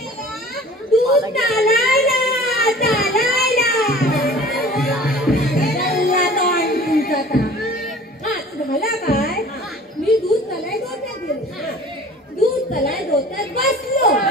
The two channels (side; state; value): both; normal; correlation 0.45